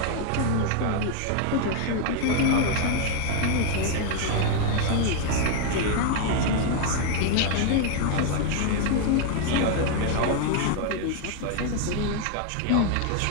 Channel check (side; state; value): both; different; correlation 0.00